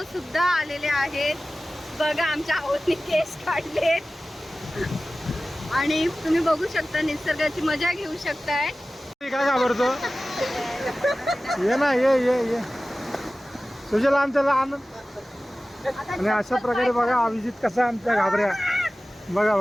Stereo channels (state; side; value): normal; both; correlation 0.96